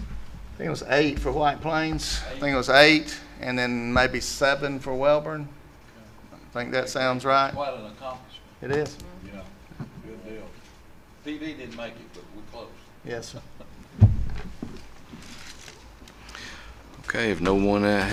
I think it was 8 for White Plains. I think it was 8, and then maybe 7 for Welborn. I think that sounds right. Quite an accomplishment. It is. Yeah, good deal. TV didn't make it, but we're close. Yes, sir. Okay, if no one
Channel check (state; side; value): identical; both; correlation 1.00